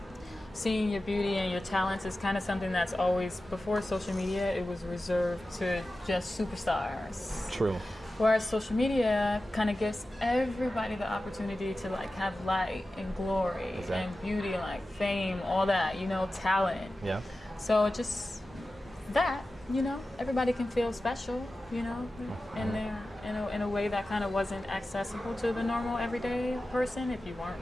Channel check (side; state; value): both; normal; correlation 0.94